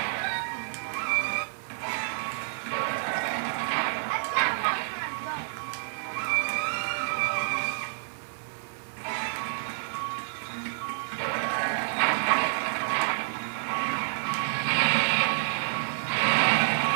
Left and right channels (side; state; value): left; silent; digital silence